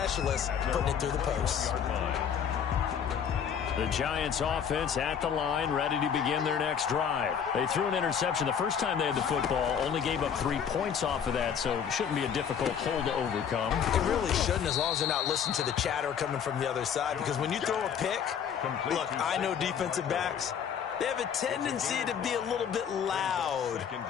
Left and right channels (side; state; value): right; quieter; 7.8 dB